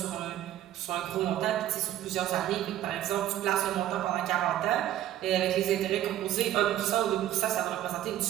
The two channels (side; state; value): left; quieter; 12.7 dB